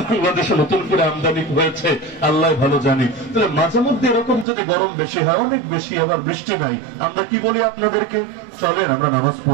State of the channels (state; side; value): drops out; left; at 4.5 s